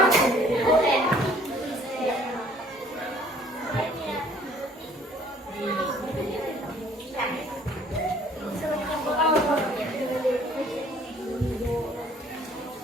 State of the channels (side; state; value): both; normal; correlation 0.57